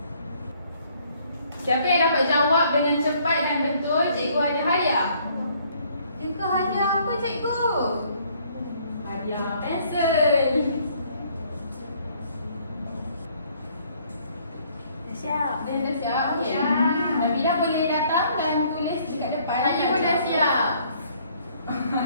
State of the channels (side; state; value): both; inverted; correlation -0.63